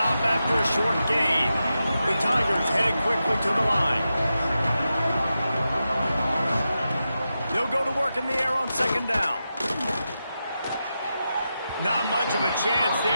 after a short gain. The Tigers headed quickly to the line. They'll go to work in the air on 2nd down. Not much of a chance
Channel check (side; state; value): both; inverted; correlation -0.89